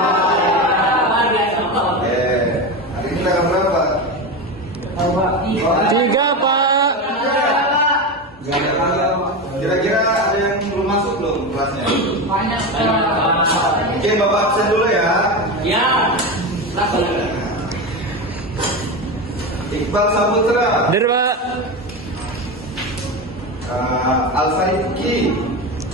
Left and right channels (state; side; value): normal; both; correlation 0.20